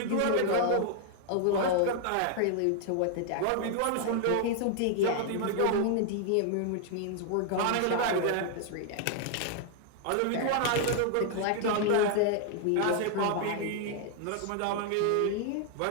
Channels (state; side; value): different; both; correlation 0.00